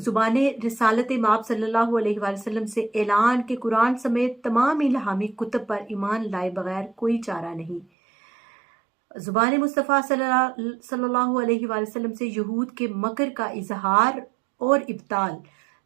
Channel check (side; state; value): left; drops out; at 7.9 s